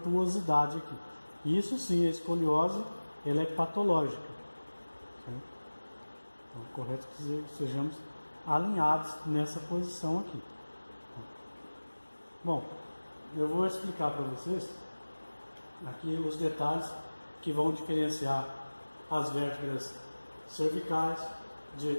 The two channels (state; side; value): inverted; both; correlation -1.00